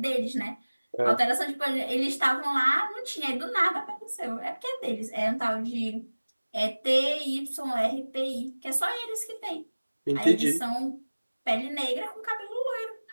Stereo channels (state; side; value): inverted; both; correlation -1.00